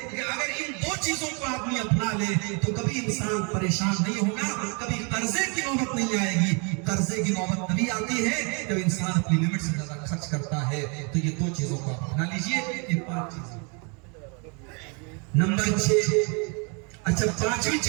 کہ اگر ان 2 چیزوں کو آدمی اپنا لے تو کبھی انسان پریشان نہیں ہوگا، کبھی قرضے کی نوبت نہیں آئے گی۔ قرضے کی نوبت تبھی آتی ہے جب انسان اپنی لمٹ سے زیادہ خرچ کرتا ہے۔ تو یہ 2 چیزوں کو اپنا لیجیے، یہ 5 چیزیں۔ نمبر 6، اچھا 5ویں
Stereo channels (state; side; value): quieter; left; 34.4 dB